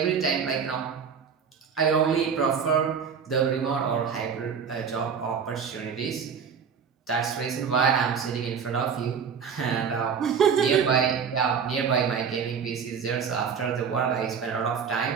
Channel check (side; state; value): left; quieter; 6.6 dB